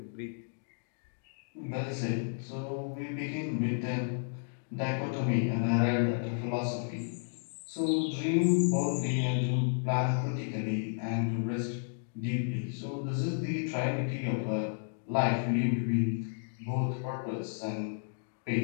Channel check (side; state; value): right; silent; digital silence